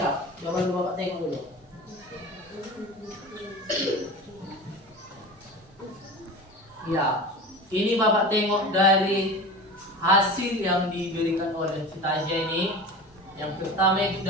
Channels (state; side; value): normal; both; correlation 0.32